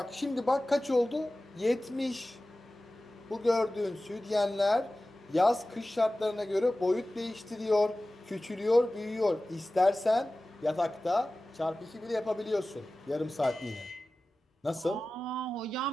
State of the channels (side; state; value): both; normal; correlation 0.96